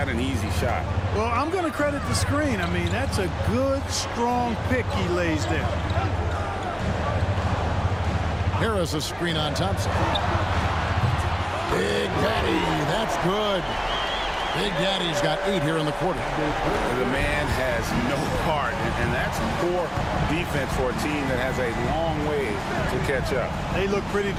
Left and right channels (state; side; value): identical; both; correlation 1.00